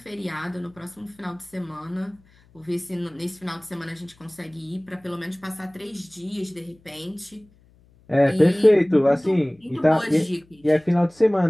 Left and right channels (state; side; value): noise; left; hum, 30 dB below the sound